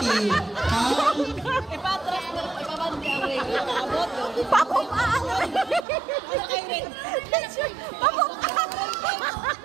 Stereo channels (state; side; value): drops out; left; at 5.9 s